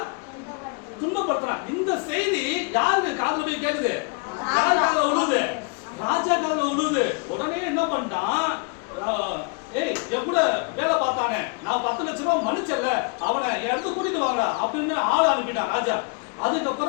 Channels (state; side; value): quieter; right; 32.8 dB